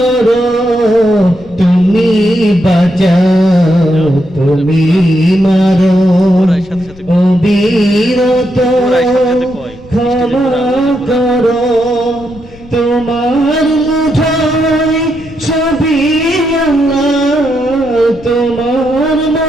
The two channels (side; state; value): left; noise; rumble, 22 dB below the sound